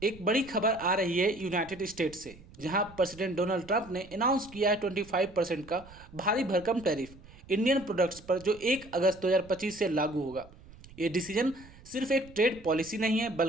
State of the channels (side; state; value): right; noise; rumble, 21 dB below the sound